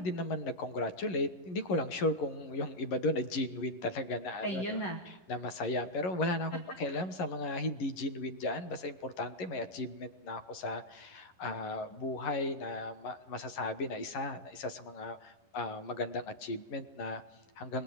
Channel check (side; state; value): right; late; 11 ms